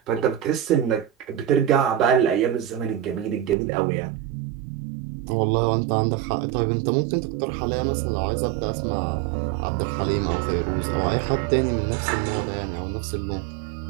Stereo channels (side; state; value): left; drops out; at 3.6 s